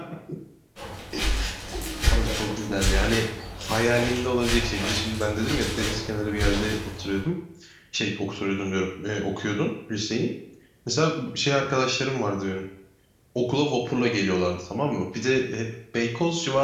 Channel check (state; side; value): identical; both; correlation 1.00